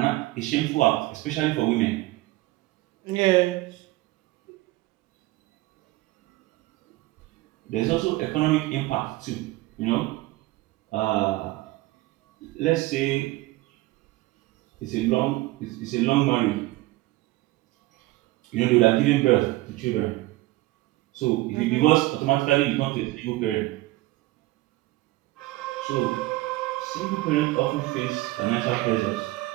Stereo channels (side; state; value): left; quieter; 18.9 dB